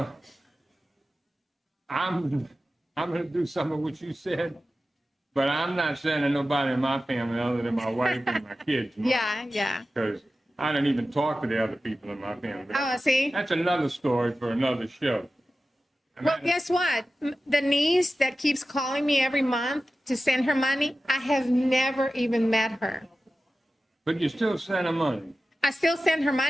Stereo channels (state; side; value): normal; both; correlation 0.94